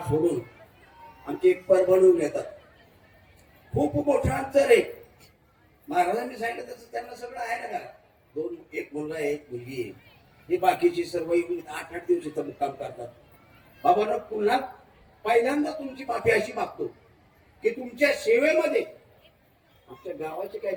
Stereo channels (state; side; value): identical; both; correlation 1.00